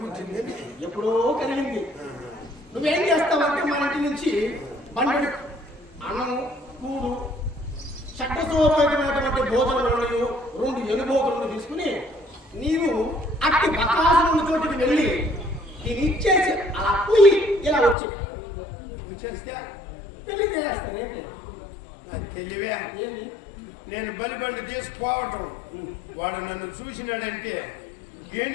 పుట్టింది? ఎప్పుడో కలిగింది. నువ్వేం చేస్తావంటే మన ఇంటి నుంచి బండి అన్నము, కూడు, చట్టసోపేతమైనటువంటి భోజనాలు 2 ఎనుబోతులను తీసుకుని నీవు అట్టి బకాసురుని చోటికి వెళ్ళి దీన్ని ఇచ్చేసి అలా పోయి ఇలా వచ్చి చేస్తే పెళ్లి చేస్తాను. తెలివే. ఏమి? నేను బలిబండి తీసుకుపోవటం, వాడు నన్ను చూసినాడంటే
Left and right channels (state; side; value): drops out; right; at 17.9 s